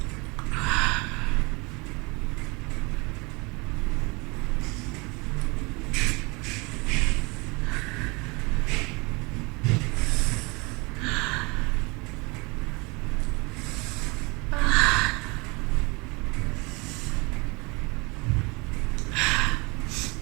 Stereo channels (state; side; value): quieter; left; 27.5 dB